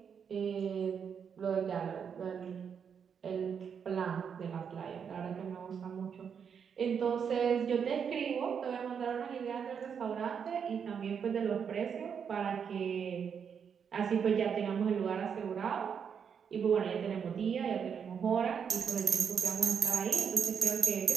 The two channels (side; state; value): left; quieter; 7.1 dB